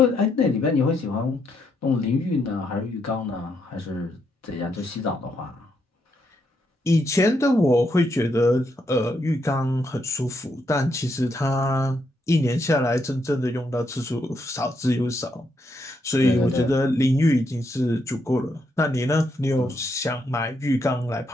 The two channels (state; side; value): normal; both; correlation 0.78